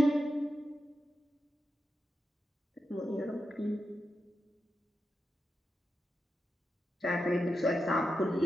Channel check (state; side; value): normal; both; correlation 0.88